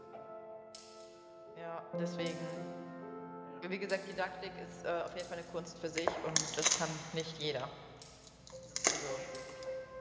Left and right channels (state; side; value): identical; both; correlation 1.00